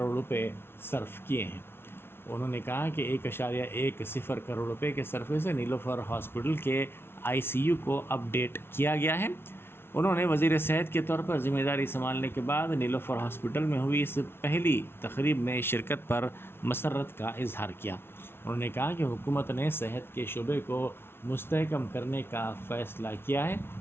روپے صرف کیے ہیں۔ انہوں نے کہا کہ 1.10 کروڑ روپے کے صرفے سے نیلوفر ہاسپٹل کے ICU کو اپ ڈیٹ کیا گیا ہے۔ انہوں نے وزیر صحت کے طور پر ذمہ داری سنبھالنے کے بعد نیلوفر ہاسپٹل میں ہوئی اس پہلی تقریب میں شرکت پر مسرت کا اظہار کیا۔ انہوں نے کہا کہ حکومت نے صحت کے شعبے کو مستحکم کرنے کا فیصلہ کیا ہے۔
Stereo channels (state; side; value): late; right; 0.12 ms